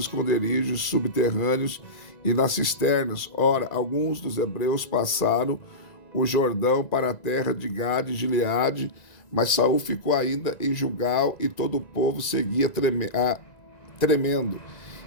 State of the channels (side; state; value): right; late; 1.9 ms